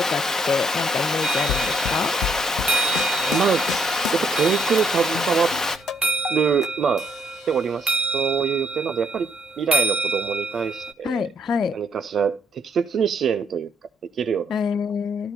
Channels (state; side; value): normal; both; correlation 0.70